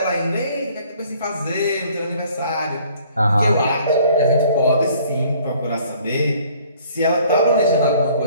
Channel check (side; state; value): both; inverted; correlation -0.57